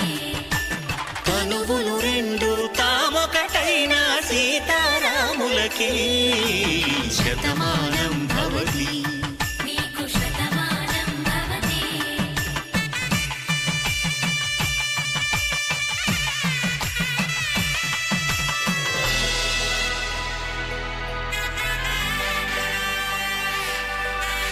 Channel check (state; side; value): identical; both; correlation 1.00